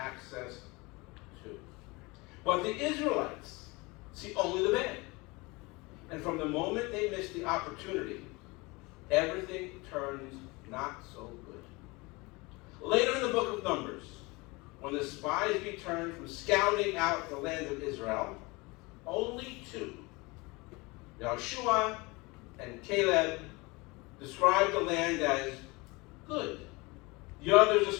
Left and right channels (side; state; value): right; quieter; 24.9 dB